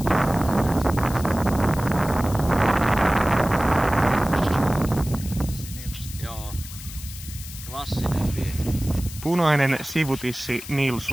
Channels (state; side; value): noise; left; hiss, 14 dB below the sound